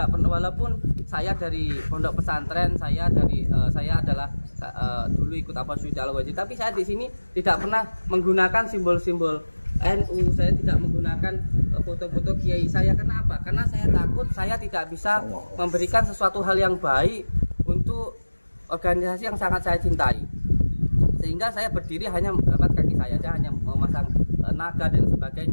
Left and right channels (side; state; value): both; inverted; correlation -1.00